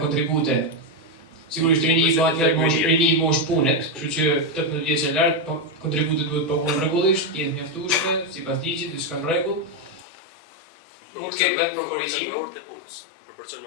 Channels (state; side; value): drops out; right; at 10.1 s